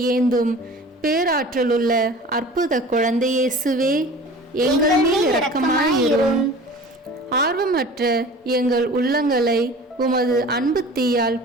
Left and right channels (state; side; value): normal; both; correlation 0.41